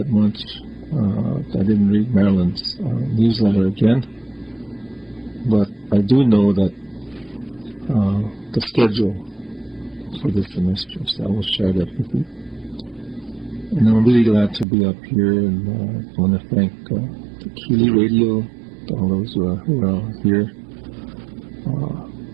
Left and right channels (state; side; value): drops out; left; at 14.7 s